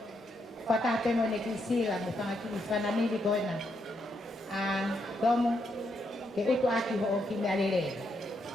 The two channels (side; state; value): both; normal; correlation 0.79